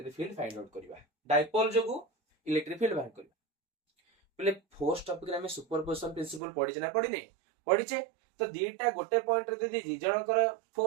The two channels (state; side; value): drops out; left; at 6.4 s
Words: फील्ड फाइंड आउट करबा डायपोल जोगु इलेक्ट्रिक फील्ड बाहर करबा पिले फोर्स टॉपिक रे हमें सुपरपोजिशन प्रिंसिपल पढि ना पढि नै पढिचे तो दीटा गोटे पॉइंट रे दि दि जनकर